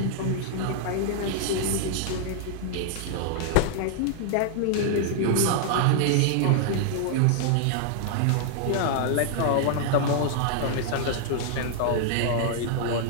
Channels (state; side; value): different; both; correlation -0.01